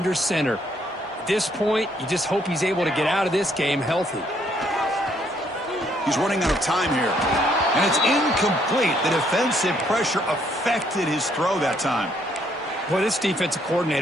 center. At this point, you just hope he's able to get out of this game healthy. He's running out of time here. And it's incomplete. The defensive pressure affected his throw that time. Well, this defensive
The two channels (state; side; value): normal; both; correlation 0.69